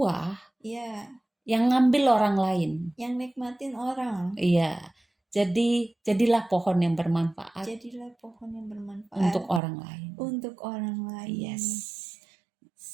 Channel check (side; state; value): left; drops out; at 9.6 s